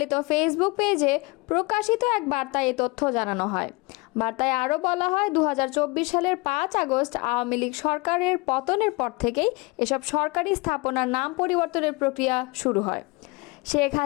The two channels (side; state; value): right; quieter; 26.1 dB